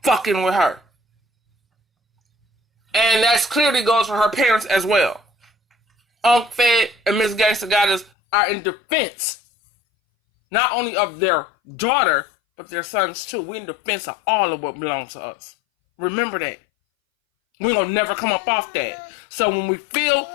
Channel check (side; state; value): right; drops out; at 8.1 s